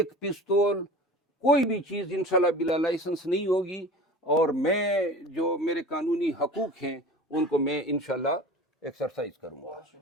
پستول کوئی بھی چیز انشاءاللہ بلا لائسنس نہیں ہوگی, اور میں جو میرے قانونی حقوق ہیں ان کو میں انشاءاللہ ایکسرسائز کروں گا.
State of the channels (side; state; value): both; normal; correlation 0.38